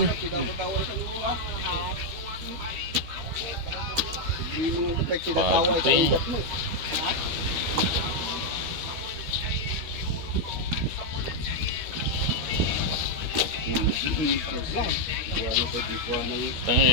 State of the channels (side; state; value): left; late; 13 ms